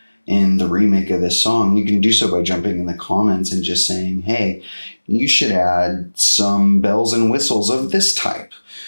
in the remake of this song, you can do so by jumping in the comments and just saying, hey, you should add some bells and whistles of this type.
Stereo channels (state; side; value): inverted; both; correlation -1.00